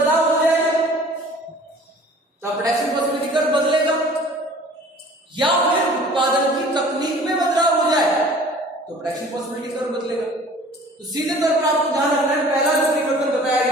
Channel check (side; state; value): both; normal; correlation 0.48